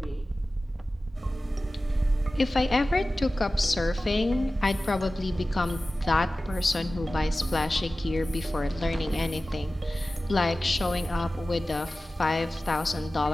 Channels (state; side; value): normal; both; correlation 0.96